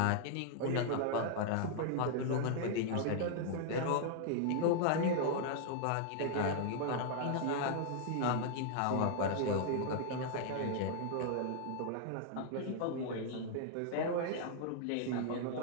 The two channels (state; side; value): different; both; correlation -0.01